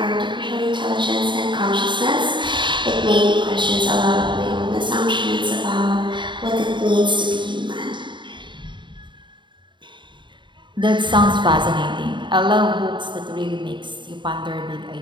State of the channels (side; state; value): left; late; 0.23 ms